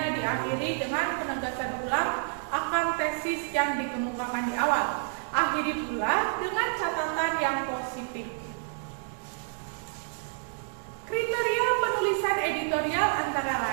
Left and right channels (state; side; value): silent; left; digital silence